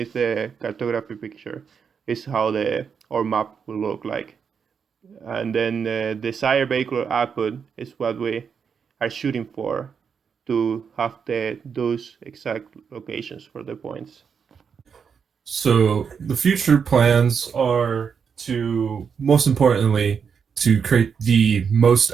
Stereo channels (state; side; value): quieter; left; 6.6 dB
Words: the cartography picture is how our map will look like. And then the desired vehicular output is what we are shooting for, to have those exact locations for the points. So the future plans are to, most importantly, to create the most